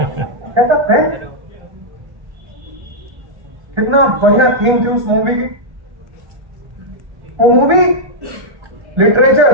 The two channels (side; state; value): left; late; 1.4 ms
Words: कहता पेन, कितना बढ़िया थीम थी उस मूवी की। वो मूवी लिटरेचर,